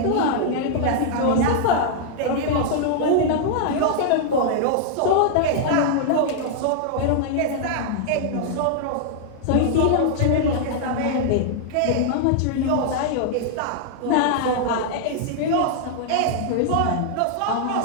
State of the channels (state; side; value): different; both; correlation -0.01